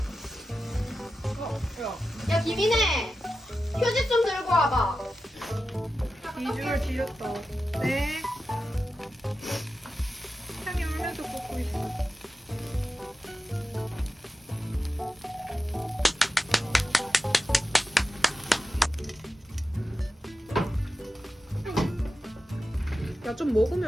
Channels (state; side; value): normal; both; correlation 0.92